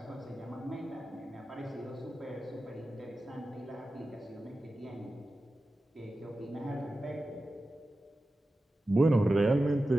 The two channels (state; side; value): normal; both; correlation 0.93